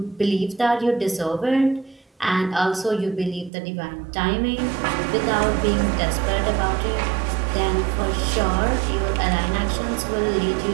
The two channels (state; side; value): drops out; left; at 3.5 s